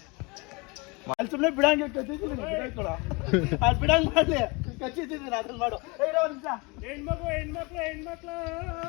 ಅಲ್ಲಿ ಸುಮ್ಮನೆ ಬಿಡಂಗೆ ಬಿಡಂಗ್ ಮಾಡ್ಲಿ ಕಚ್ಚಿದ್ದೀನಿ ಅದ್ರಲ್ಲಿ ಮಾಡು. ಹೆಣ್ಮಕ್ಳು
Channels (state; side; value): quieter; right; 27.7 dB